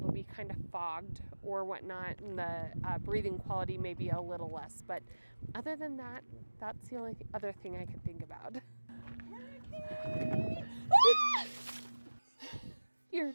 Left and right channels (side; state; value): both; inverted; correlation -1.00